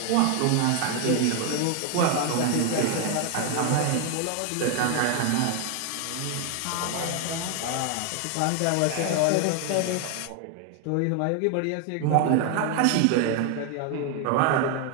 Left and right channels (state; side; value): different; both; correlation 0.01